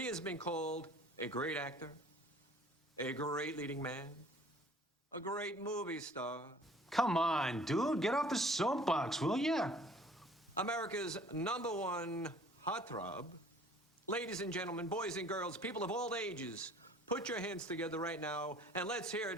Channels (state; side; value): normal; both; correlation 0.52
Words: has been called a great actor, a great leading man, a great movie star. Come on, dude, get off the soapbox, will ya? America's #1 heartthrob. Ladies and gentlemen, boys and girls, people of all ages, put your hands together right now and let's hear